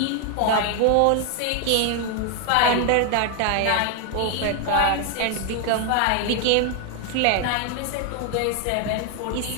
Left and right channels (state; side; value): different; both; correlation 0.00